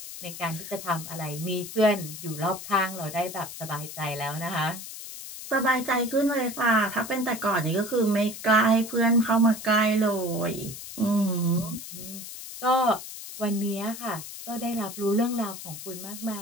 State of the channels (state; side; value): noise; left; hiss, 11 dB below the sound